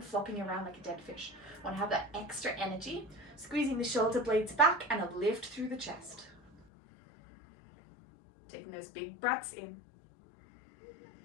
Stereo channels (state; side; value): drops out; right; at 6.5 s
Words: flopping around like a dead fish. We want to have that extra energy. Squeezing the shoulder blades back and a lift through the chest. Taking those big breaths in.